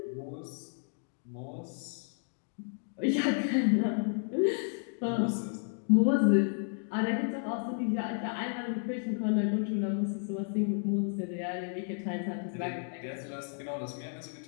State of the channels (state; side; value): silent; right; 56 dB below the other